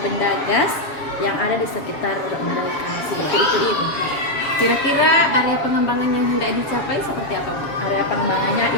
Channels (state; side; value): late; right; 7.3 ms